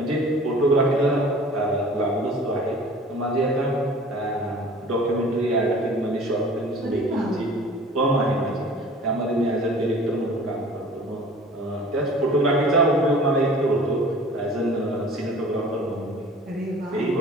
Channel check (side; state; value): both; normal; correlation 0.46